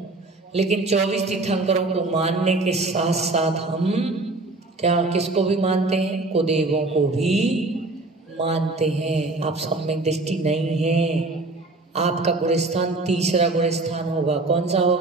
लेकिन 24 तीर्थंकरों को मानने के साथ साथ हम क्या किसको भी मानते हैं? कुदेवों को भी मानते हैं। आप सम्यक दृष्टि नहीं है। आपका गुणस्थान तीसरा गुणस्थान होगा। कौन सा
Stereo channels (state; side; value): quieter; left; 3.1 dB